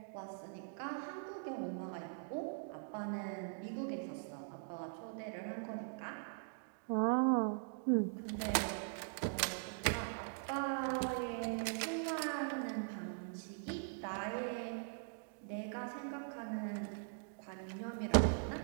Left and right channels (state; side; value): silent; left; digital silence